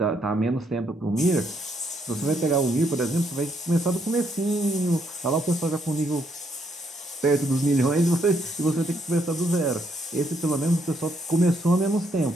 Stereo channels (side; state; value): both; normal; correlation 0.74